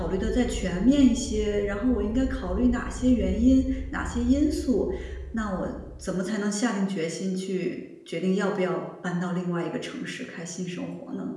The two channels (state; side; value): identical; both; correlation 1.00